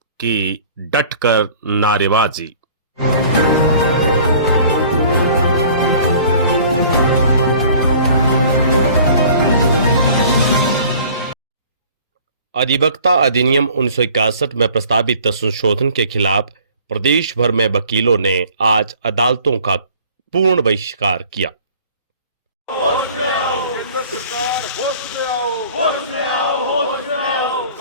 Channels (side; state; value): both; inverted; correlation -0.50